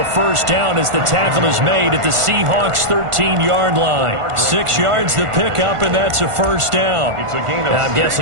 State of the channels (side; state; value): left; late; 1.5 ms